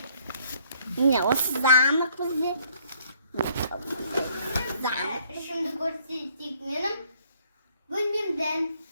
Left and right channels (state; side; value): inverted; both; correlation -0.64